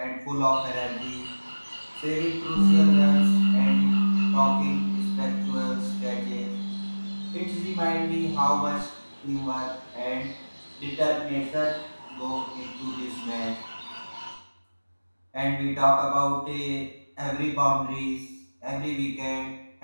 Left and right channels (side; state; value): both; inverted; correlation -1.00